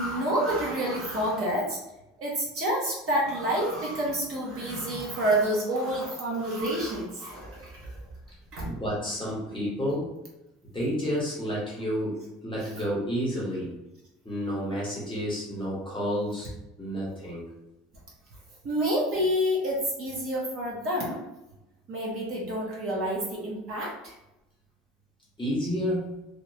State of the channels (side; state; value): both; normal; correlation 0.35